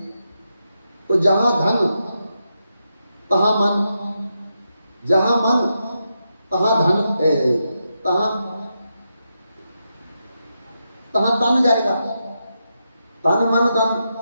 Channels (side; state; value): both; inverted; correlation -0.85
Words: तो जहां धन तहां मन, जहां मन तहां धन, तहां तहां तन जाएगा। तन मन धन